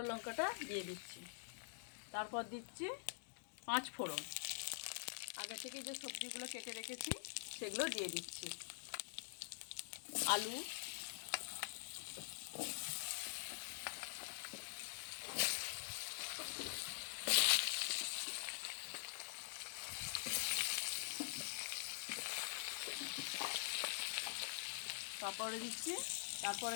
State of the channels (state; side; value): silent; right; digital silence